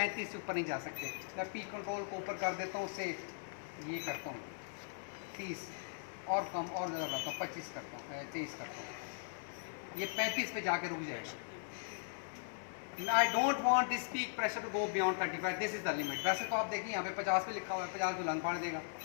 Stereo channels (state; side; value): silent; right; 52 dB below the other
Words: से ऊपर नहीं जा सकते। मैं पी कंट्रोल को ऊपर कर देता हूँ, उससे ये करता हूँ 30 और कम और ज़्यादा बढ़ाता हूँ, 25 करता हूँ, 23 करता हूँ, ये 35 पे जाके रुक जाएगा। I don't want this peak pressure to go beyond 35. This is the limit. वैसे तो आप देखिए यहाँ पे 50 पे लिखा हुआ है, 50 को लंग फाड़ देगा।